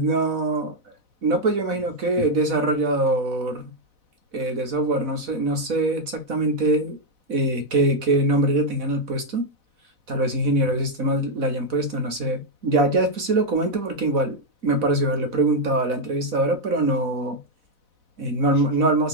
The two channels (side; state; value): left; late; 4.0 ms